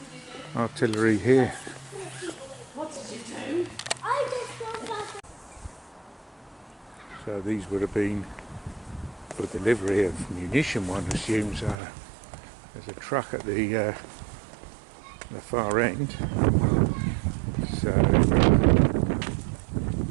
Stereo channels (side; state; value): left; drops out; at 11.8 s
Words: artillery here. So these would have been for delivery of munition, one assumes. There's a truck at the far end. So